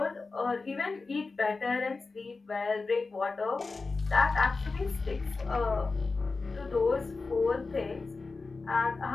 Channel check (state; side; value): quieter; right; 4.0 dB